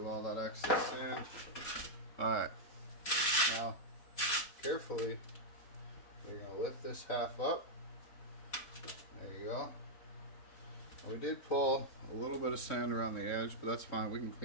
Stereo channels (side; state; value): right; late; 4.0 ms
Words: all that excess sand. Alright, now carefully we're going to lift this half up. There you go. We did pull a little bit of sand around the edge, but that's fine, we can